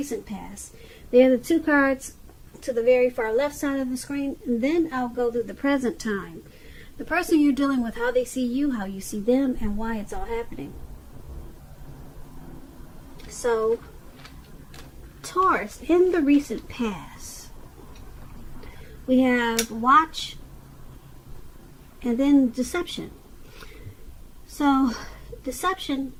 past. They're the 2 cards to the very far left side of the screen, and then I'll go through the present time. The person you're dealing with, how they see you, how you see them, and why it's all happening. So, Taurus, in the recent past, we have watch and then deception. So, deception,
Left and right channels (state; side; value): identical; both; correlation 1.00